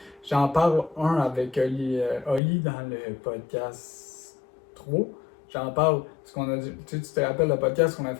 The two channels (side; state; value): right; drops out; at 2.4 s